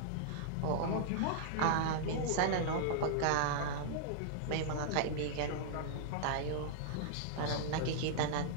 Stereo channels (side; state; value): both; different; correlation -0.02